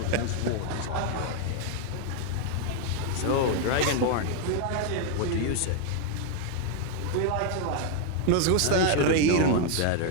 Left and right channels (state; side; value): different; both; correlation 0.01